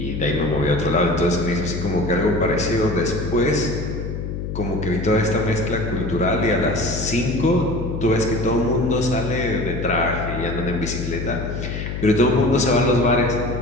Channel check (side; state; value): left; noise; hum, 5 dB below the sound